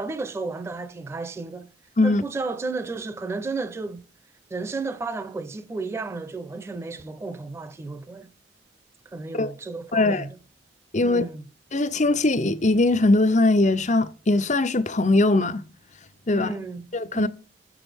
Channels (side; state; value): both; normal; correlation 0.62